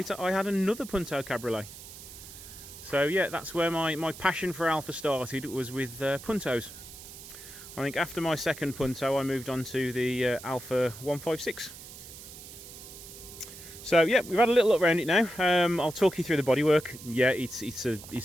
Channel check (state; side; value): noise; right; hiss, 15 dB below the sound